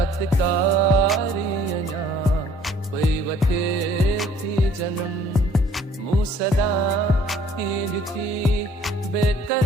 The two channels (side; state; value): both; normal; correlation 0.57